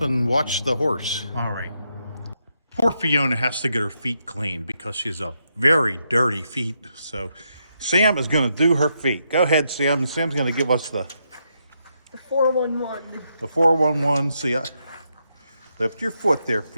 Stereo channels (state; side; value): inverted; both; correlation -0.80